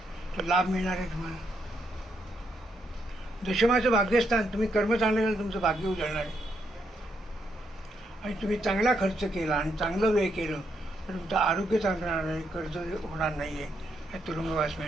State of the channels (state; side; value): normal; both; correlation 0.78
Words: तर लाभ मिळणार आहे तुम्हाला. दशमाचं भाग्यस्थान, तुम्ही कर्म चांगलं केलं तुमचं भाग्य उजळणार आहे. आणि तुम्ही चांगला खर्च केला आणि चांगलं व्यय केलं तर तुमचं आरोग्य चांगलं राहणार आहे, कर्ज होणार नाही आहे, तुरुंगवास